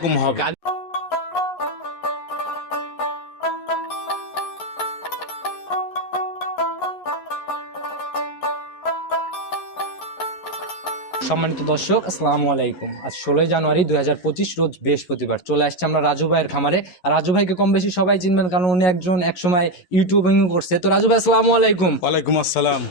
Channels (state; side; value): late; right; 11 ms